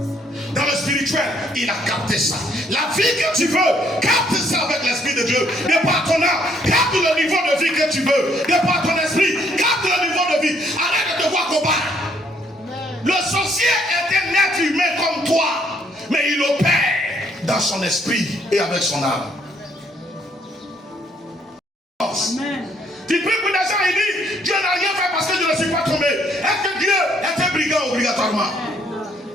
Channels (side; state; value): both; normal; correlation 0.68